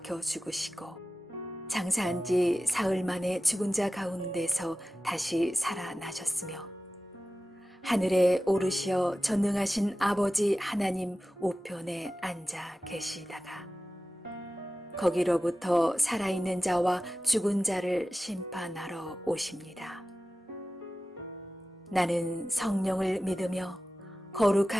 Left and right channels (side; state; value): both; normal; correlation 0.95